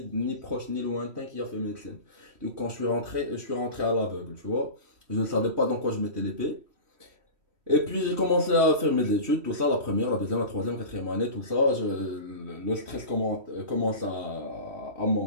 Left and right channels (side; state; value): left; late; 3.1 ms